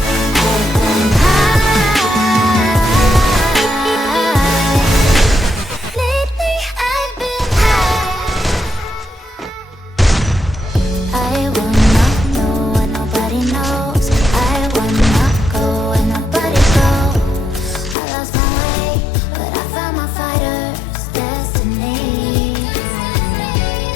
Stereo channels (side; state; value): right; drops out; at 17.9 s